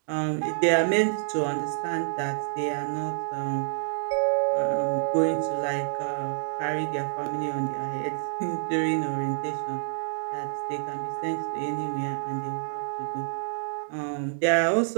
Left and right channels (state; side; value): silent; left; digital silence